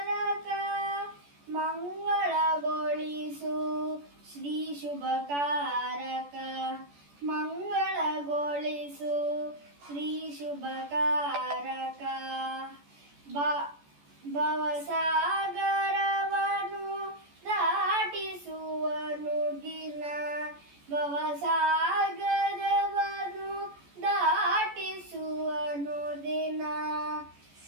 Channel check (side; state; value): left; late; 14 ms